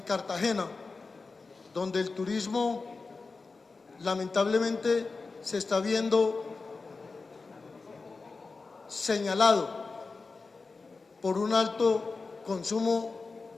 donde el turismo lamentablemente se está viendo señalado por un alto consumo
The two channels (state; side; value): quieter; right; 4.1 dB